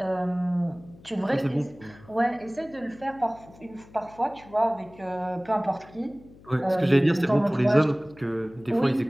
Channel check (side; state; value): left; noise; hum, 23 dB below the sound